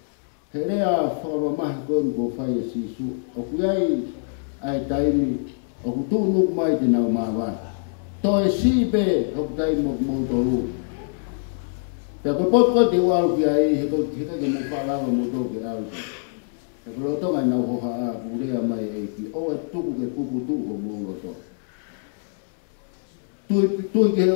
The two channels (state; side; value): silent; right; 63 dB below the other